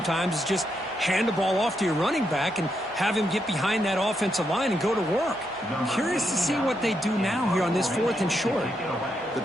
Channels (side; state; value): both; normal; correlation 0.81